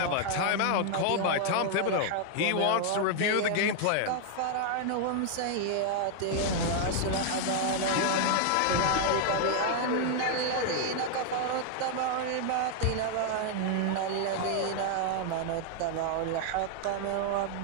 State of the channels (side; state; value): both; different; correlation 0.00